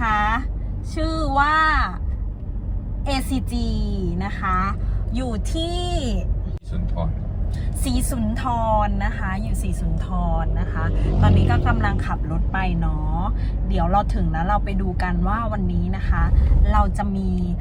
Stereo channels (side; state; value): both; identical; correlation 1.00